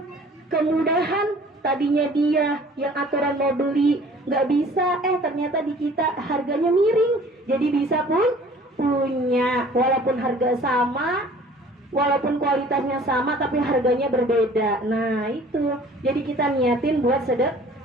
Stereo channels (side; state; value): both; normal; correlation 0.51